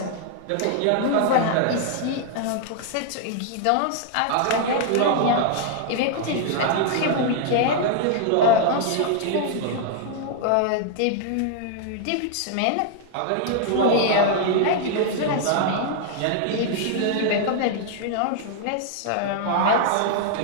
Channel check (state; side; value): different; both; correlation 0.00